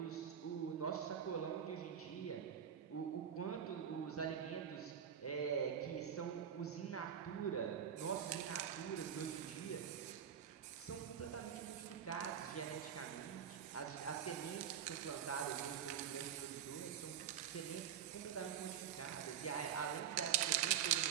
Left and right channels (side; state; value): left; quieter; 8.8 dB